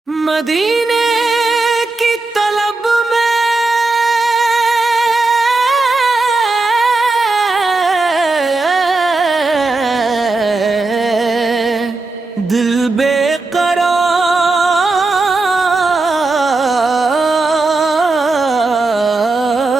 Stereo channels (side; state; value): left; quieter; 3.4 dB